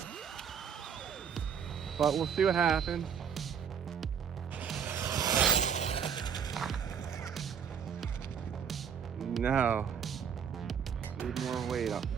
but we'll see what happens. No, need more weight up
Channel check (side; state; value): left; quieter; 7.5 dB